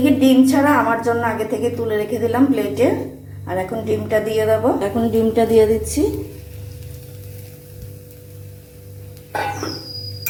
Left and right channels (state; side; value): identical; both; correlation 1.00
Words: ডিম ছাড়া আমার জন্য আগে থেকে তুলে রেখে দিলাম প্লেটে। আর এখন ডিমটা দিয়ে দেব, এখন ডিমটা দিয়ে দিচ্ছি।